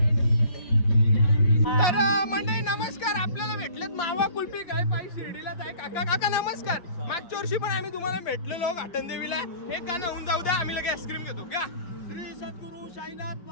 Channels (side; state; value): right; late; 5.6 ms